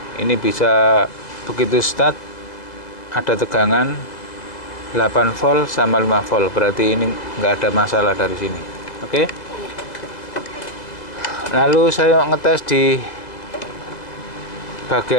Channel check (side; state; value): right; late; 1.9 ms